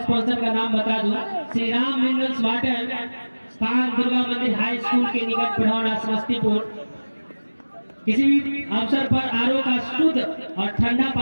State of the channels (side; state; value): both; inverted; correlation -1.00